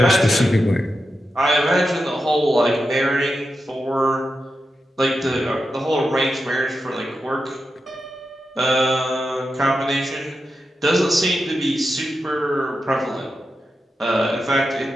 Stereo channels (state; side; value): normal; both; correlation 0.89